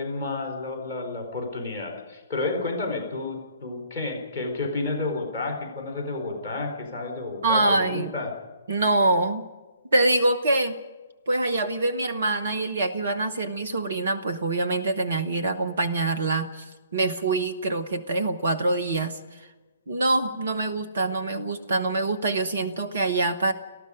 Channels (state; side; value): inverted; both; correlation -0.64